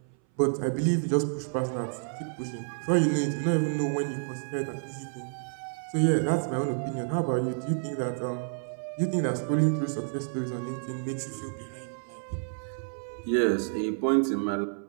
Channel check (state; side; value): silent; left; 58 dB below the other